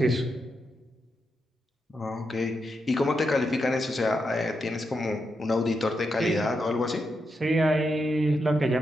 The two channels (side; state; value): both; normal; correlation 0.84